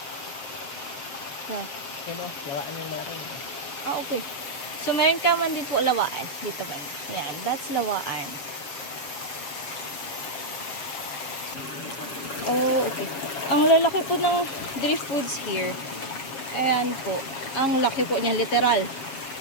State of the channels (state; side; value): late; right; 7.2 ms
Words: Yeah. Yan o, lawaan yung malaki. Ah, okay. So, meron ka man din po lawaan. Dito ba? Yan. That's lawaan. Oh, okay. Ang lalaki po ng drift foods here. Ayan po. Ang laki po niya, literal.